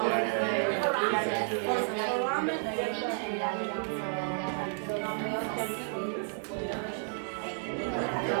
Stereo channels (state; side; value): silent; left; 57 dB below the other